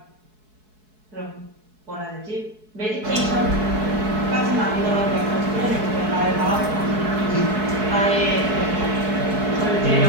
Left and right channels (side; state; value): left; late; 4.7 ms